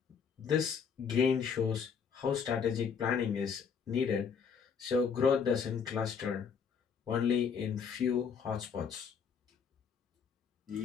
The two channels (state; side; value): quieter; right; 6.5 dB